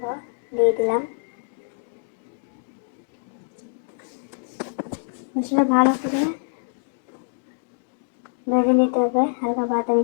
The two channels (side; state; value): right; silent; digital silence